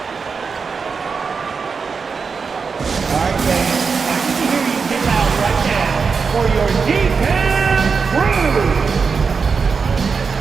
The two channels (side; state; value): left; quieter; 5.3 dB